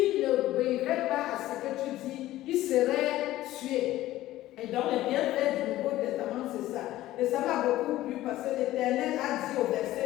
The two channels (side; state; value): right; quieter; 15.3 dB